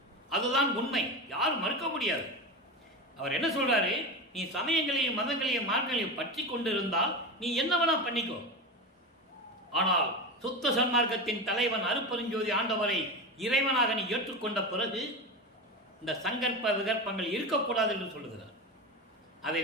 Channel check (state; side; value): normal; both; correlation 0.22